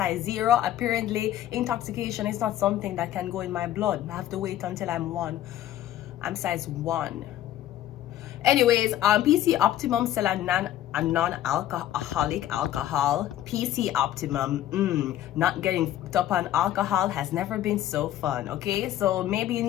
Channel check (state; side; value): quieter; right; 12.6 dB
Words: 0, apparently intoxication is not something that can go in my blood. I have to wait until I'm 1. I'm size 1. Anyways, PC Optimum sell a non-alcoholic alcohol. PC Optimum, not getting hooked up on alcohol has never been so fun. Okay, so maybe you